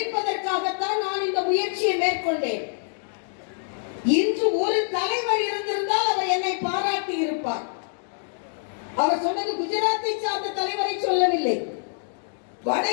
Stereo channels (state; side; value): silent; right; digital silence